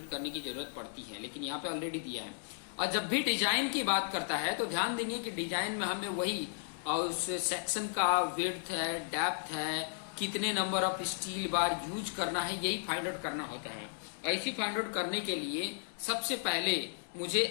करने की जरूरत पड़ती है, लेकिन यहाँ पे ऑलरेडी दिया है। और जब भी डिजाइन की बात करता है तो ध्यान देंगे कि डिजाइन में हमें वही उस सेक्शन का विड्थ है, डेप्थ है, कितने number of steel bar use करना है, यही फाइंड आउट करना होता है। ऐसी फाइंड आउट करने के लिए सबसे पहले मुझे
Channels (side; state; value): right; silent; digital silence